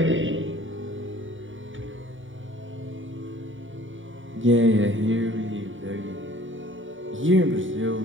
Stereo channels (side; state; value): left; late; 0.57 ms